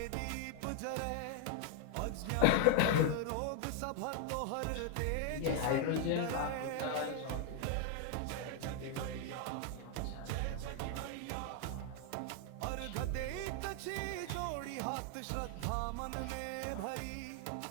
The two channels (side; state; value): both; different; correlation 0.00